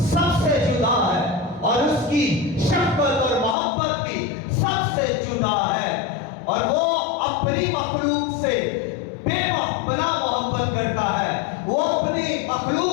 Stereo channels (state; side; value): drops out; right; at 3.6 s